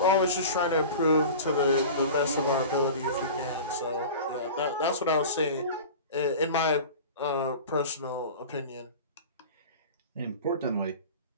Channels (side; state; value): both; inverted; correlation -0.36